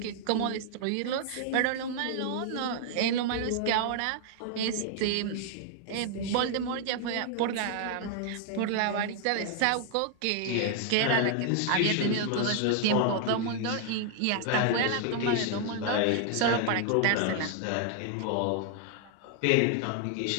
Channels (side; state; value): both; different; correlation 0.00